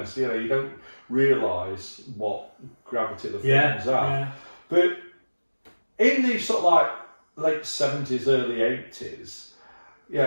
you don't realise what gravity the films have. Yeah. But in the sort of like late 70s, early 80s,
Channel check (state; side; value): inverted; both; correlation -1.00